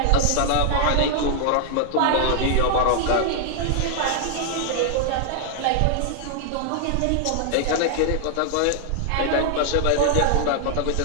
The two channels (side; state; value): both; different; correlation 0.00